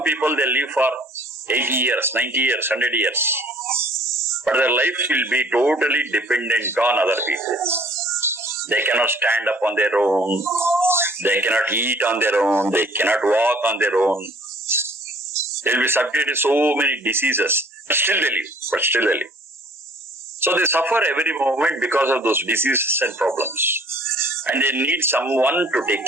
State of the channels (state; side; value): normal; both; correlation 0.54